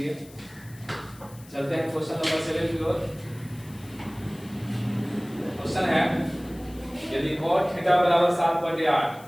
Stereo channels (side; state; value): left; noise; hiss, 23 dB below the sound